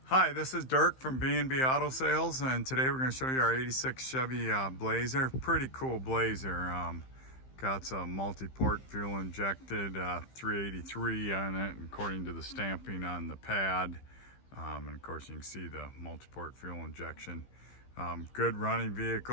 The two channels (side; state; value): right; late; 15 ms